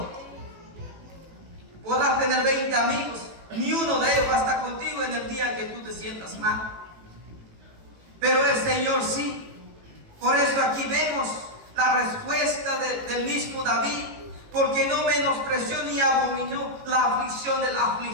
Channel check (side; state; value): left; late; 18 ms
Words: Podrás tener 20 amigos, ni uno de ellos va a estar contigo en el día que tú te sientas mal. Pero el Señor sí. Por eso aquí vemos la respuesta del mismo David, porque no menospreció ni abominó la aflicción del